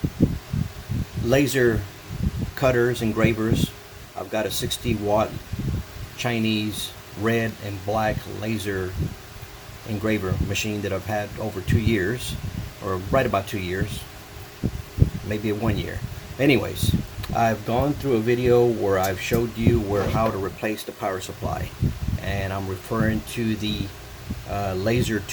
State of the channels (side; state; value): both; identical; correlation 1.00